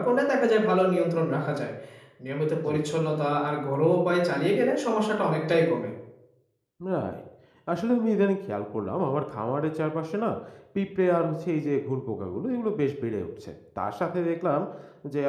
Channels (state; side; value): identical; both; correlation 1.00